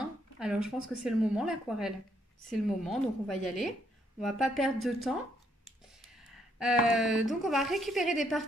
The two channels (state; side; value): normal; both; correlation 0.72